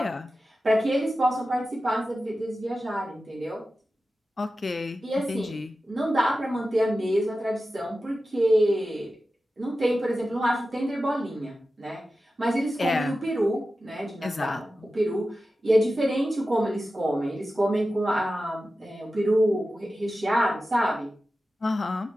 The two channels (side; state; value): both; normal; correlation 0.93